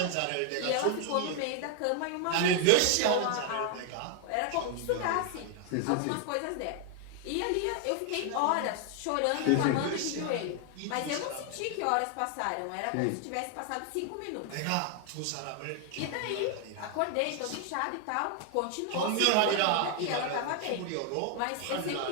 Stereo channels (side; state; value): both; different; correlation 0.00